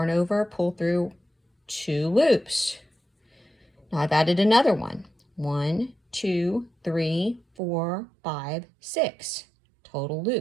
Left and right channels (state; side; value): drops out; left; at 7.4 s